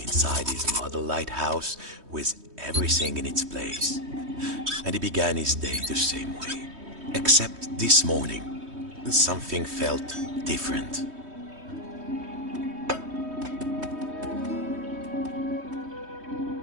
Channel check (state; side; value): late; left; 3.2 ms